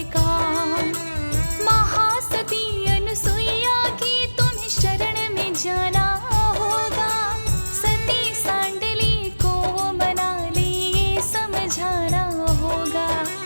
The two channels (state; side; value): inverted; both; correlation -1.00